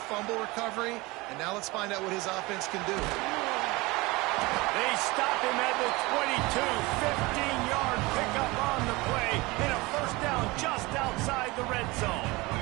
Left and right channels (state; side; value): quieter; left; 22.9 dB